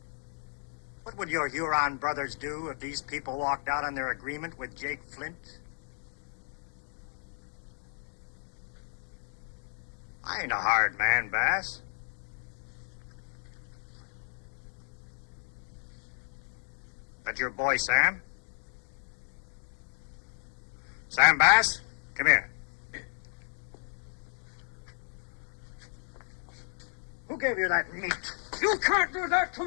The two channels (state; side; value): silent; right; 56 dB below the other